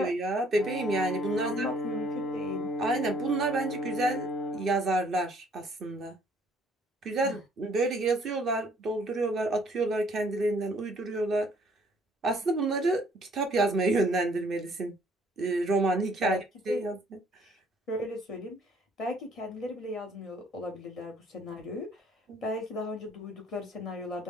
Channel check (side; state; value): both; normal; correlation 0.61